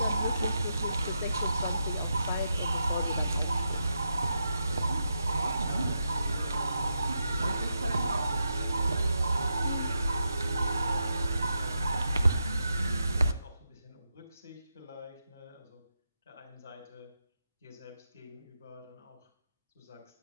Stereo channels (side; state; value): both; inverted; correlation -0.85